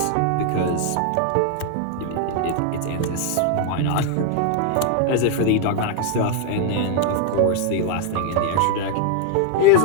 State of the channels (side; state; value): both; different; correlation 0.00